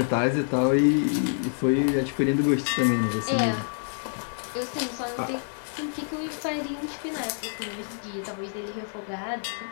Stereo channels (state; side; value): silent; right; digital silence